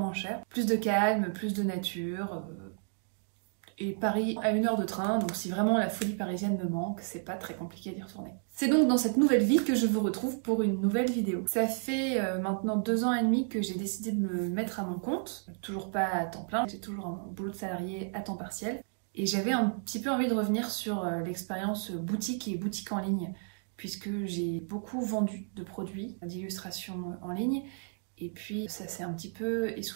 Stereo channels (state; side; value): silent; left; 56 dB below the other